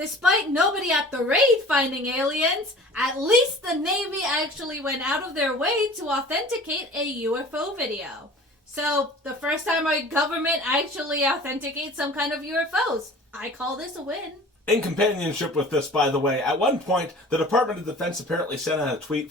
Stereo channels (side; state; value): both; normal; correlation 0.44